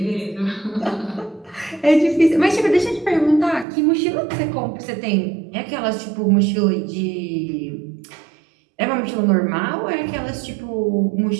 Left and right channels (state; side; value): drops out; left; at 3.7 s